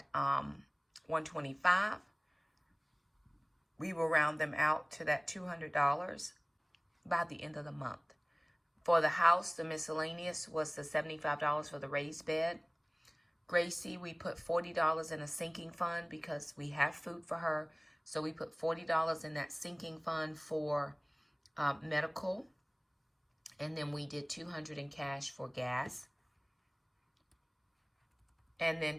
$125. We will round them out to that $200 by the end of the month. For the house, the miscellaneous was the $75 for the raised bed. Gracie, we put $40 in a sinking fund because we have food for her. So we put $40 in that sinking fund for medical. And then we did $200 in cash for gas. And then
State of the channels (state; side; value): identical; both; correlation 1.00